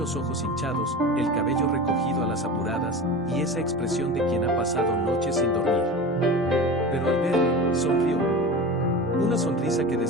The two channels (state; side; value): normal; both; correlation 0.30